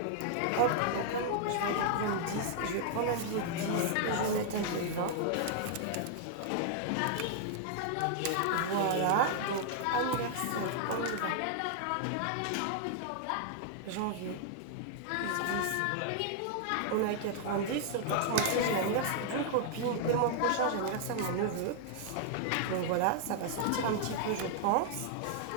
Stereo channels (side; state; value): both; different; correlation -0.01